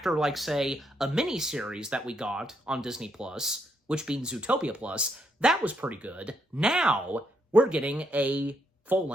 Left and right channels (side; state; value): both; normal; correlation 0.76